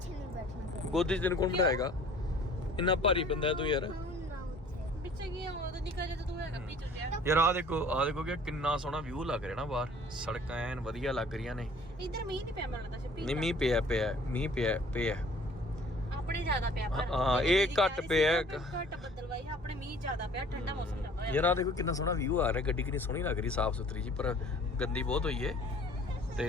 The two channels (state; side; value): normal; both; correlation 0.52